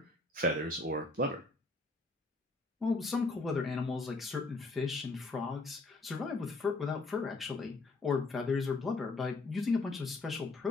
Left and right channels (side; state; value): right; quieter; 3.2 dB